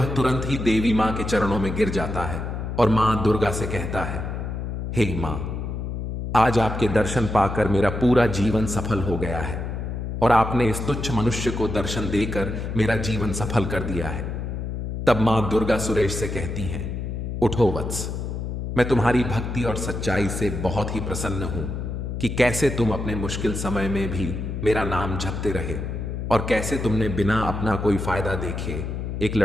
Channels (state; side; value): noise; left; hum, 4 dB below the sound